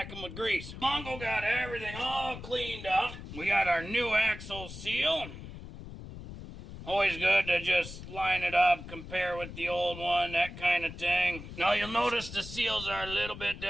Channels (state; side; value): noise; left; rumble, 12 dB below the sound